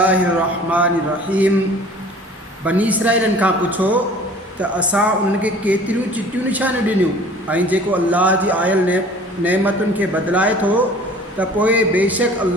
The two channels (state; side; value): normal; both; correlation 0.48